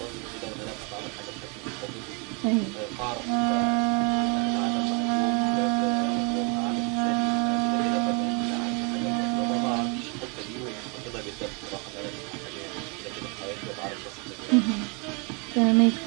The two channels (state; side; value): quieter; left; 34.7 dB